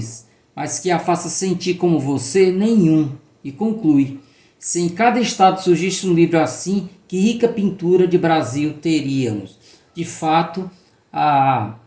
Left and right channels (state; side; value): identical; both; correlation 1.00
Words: mas que a faça sentir como você, nenhum. E conclui: se em cada estado surgisse um livro assim, que rica pintura de Brasil teríamos. De fato, a